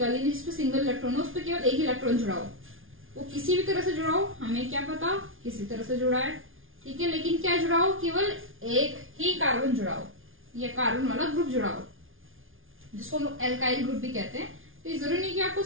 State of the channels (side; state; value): left; late; 0.58 ms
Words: यानी जिसपे सिंगल इलेक्ट्रॉन हो, उस पर केवल एक ही इलेक्ट्रॉन जुड़ा हो। वो किसी भी तरह से जुड़ा हो, हमें क्या पता किसी तरह से जुड़ा है, ठीक है, लेकिन क्या जुड़ा हो? केवल एक ही कार्बन जुड़ा हो या कार्बन वाला ग्रुप जुड़ा हो, जिसको हम लोग एल्काइल ग्रुप भी कहते हैं। तो ये जरूरी नहीं कि आपको